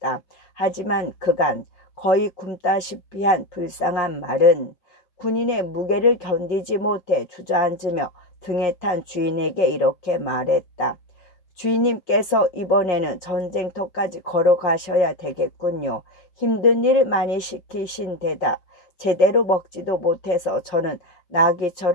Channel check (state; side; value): late; right; 5.2 ms